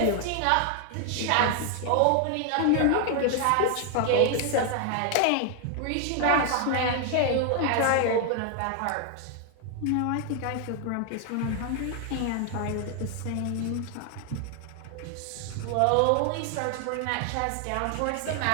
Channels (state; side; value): different; both; correlation 0.00